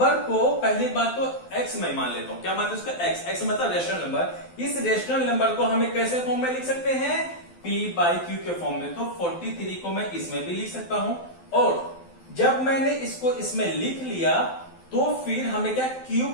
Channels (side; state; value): right; late; 12 ms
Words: को पहली बात तो x में मान लेता हूं। क्या मानते हैं उसका x मतलब रेशनल नंबर। इस रेशनल नंबर को हमें कैसे फॉर्म में लिख सकते हैं, p/q के फॉर्म में। तो 43 को मैं इसमें भी लिख सकता हूं, और जब मैंने इसको इसमें लिख लिया तो फिर हमें क्या q